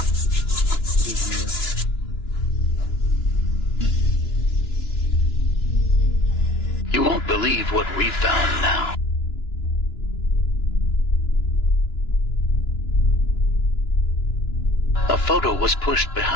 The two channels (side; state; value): right; late; 2.9 ms